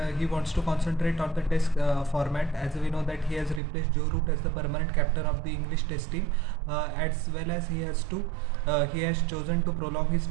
he wants to concentrate on the test format, as we know that he has replaced Joe Root as the permanent captain of the English test team, as well as he has chosen to prolong his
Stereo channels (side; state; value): left; drops out; at 3.6 s